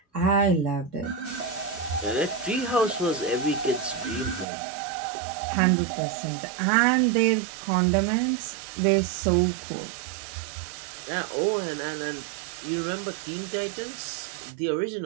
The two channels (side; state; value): left; drops out; at 4.5 s